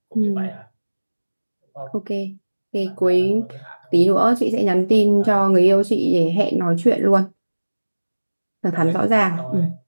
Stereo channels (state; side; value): inverted; both; correlation -1.00